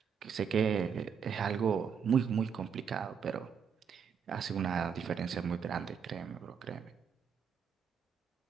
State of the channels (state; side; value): quieter; left; 7.0 dB